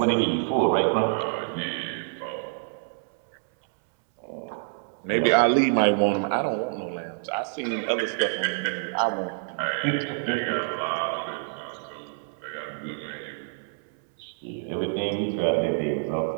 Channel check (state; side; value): silent; left; 60 dB below the other